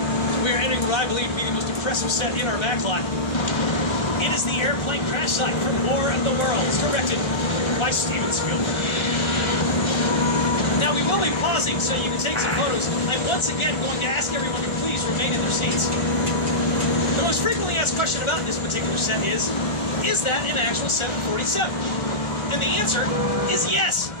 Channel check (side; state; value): right; late; 1.3 ms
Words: we are entering what I believe to be the most impressive set in our backlot. It is the airplane crash site from War of the Worlds, directed by Steven Spielberg. Now, we will be pausing so you can take some photos. I'm once again going to ask everyone to please remain in their seats. The most frequently asked question about this particular set is that an actual 747? And the answer is yes.